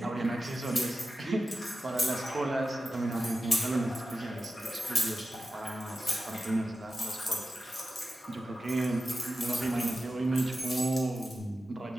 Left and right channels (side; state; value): both; normal; correlation 0.92